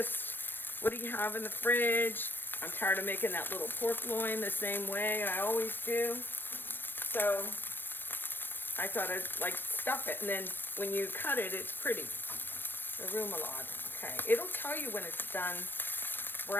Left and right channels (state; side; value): late; right; 0.095 ms